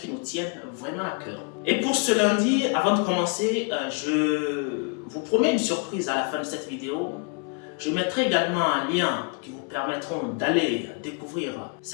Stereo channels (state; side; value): quieter; right; 37.4 dB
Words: nous tiennent vraiment à cœur. Et pour ce lundi, avant de commencer, je vous promets une surprise à la fin de cette vidéo. Je mettrai également un lien qui vous permettront d'aller découvrir